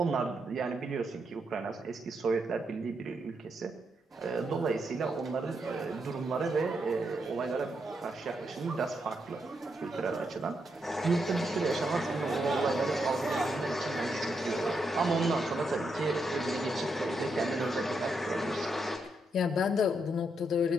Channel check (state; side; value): normal; both; correlation 0.81